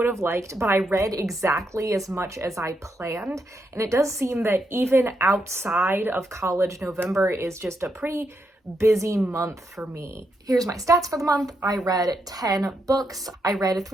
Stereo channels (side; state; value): both; normal; correlation 0.81